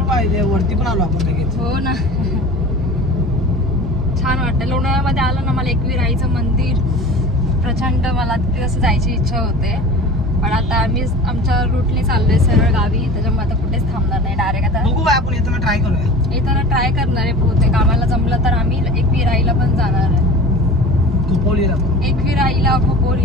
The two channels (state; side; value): normal; both; correlation 0.38